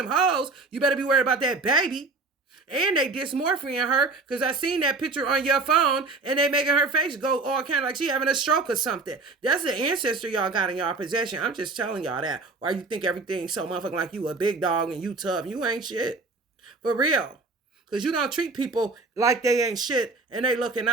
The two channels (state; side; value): quieter; left; 3.7 dB